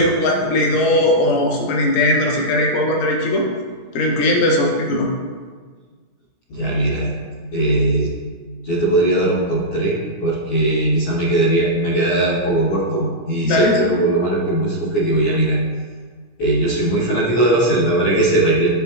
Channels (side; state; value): right; late; 17 ms